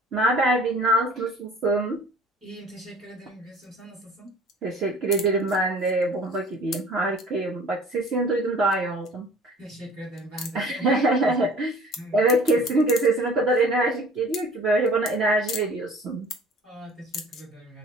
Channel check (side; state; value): both; normal; correlation 0.48